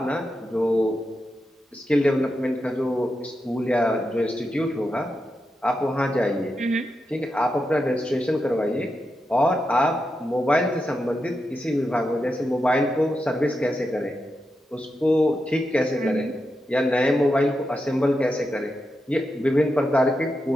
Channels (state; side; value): normal; both; correlation 0.87